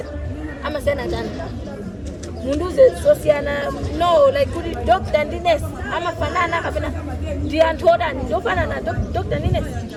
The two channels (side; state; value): both; identical; correlation 1.00